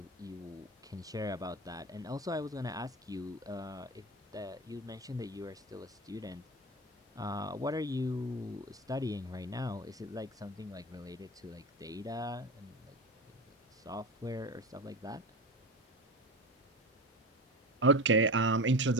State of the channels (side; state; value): both; normal; correlation 0.26